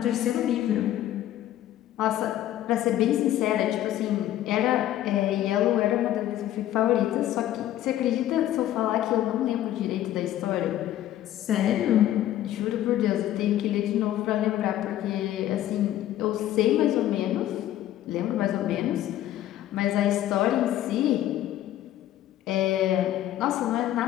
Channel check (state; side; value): quieter; right; 12.9 dB